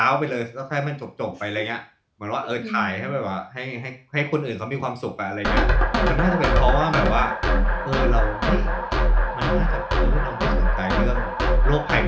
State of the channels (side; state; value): both; identical; correlation 1.00